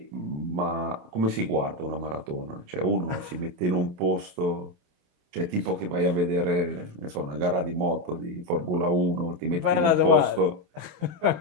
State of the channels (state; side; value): late; left; 28 ms